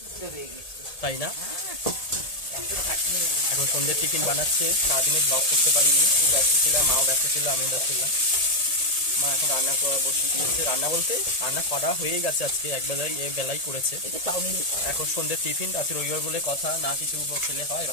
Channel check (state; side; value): late; right; 1.7 ms